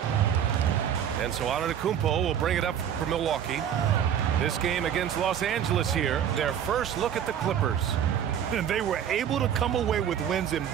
And so Antetokounmpo will bring it up for Milwaukee. This game against Los Angeles here, their first look at the Clippers. And they were able to come away with wins in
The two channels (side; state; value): left; quieter; 9.3 dB